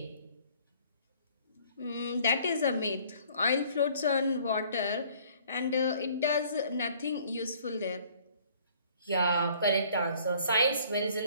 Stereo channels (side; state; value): both; inverted; correlation -0.57